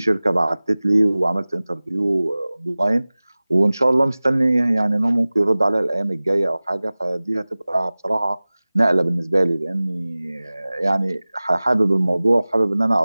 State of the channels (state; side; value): inverted; both; correlation -0.99